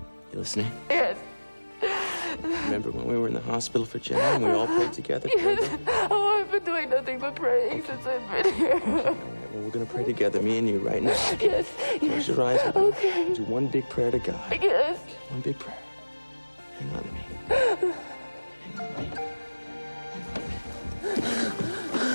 You listening? Yes. Remember when we were in the hospital for Jenna and we all prayed together? Yes. Oh, I've been doing nothing but praying since I've been here. Okay, all right. Well, we're gonna pray together, me and you, right now. Yes. Close your eyes. Okay. Do one big prayer to God. Yes. One big prayer. Hang on to me. Hang on to me.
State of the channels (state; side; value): inverted; both; correlation -1.00